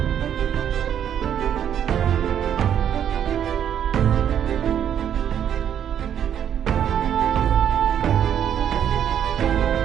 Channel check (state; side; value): quieter; left; 9.4 dB